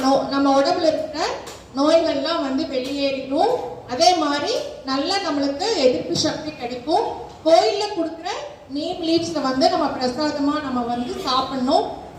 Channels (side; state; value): both; identical; correlation 1.00